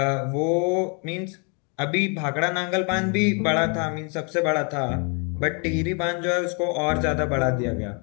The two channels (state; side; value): quieter; right; 36.5 dB